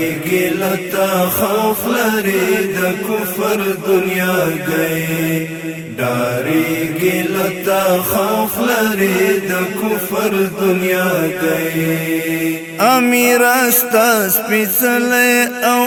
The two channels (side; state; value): both; identical; correlation 1.00